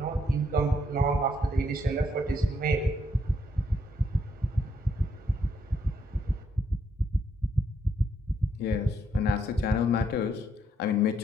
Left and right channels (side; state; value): both; normal; correlation 0.74